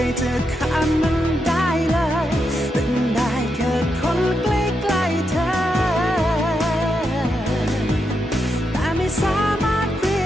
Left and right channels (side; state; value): both; normal; correlation 0.84